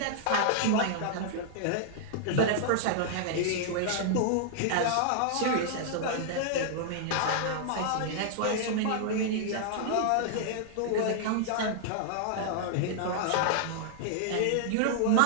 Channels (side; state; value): both; different; correlation -0.01